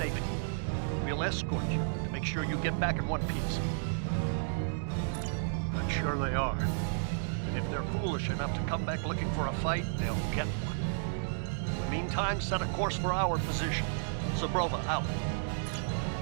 We'll escort you to make sure you get back in one piece. I'm sure they are. And if they're foolish enough to come back looking for a fight, they'll get one. In the meantime, set a course for our position. Zabrova, out.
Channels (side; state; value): left; silent; digital silence